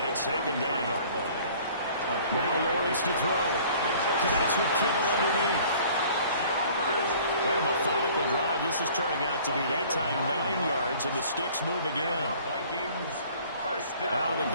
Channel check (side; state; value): both; inverted; correlation -0.52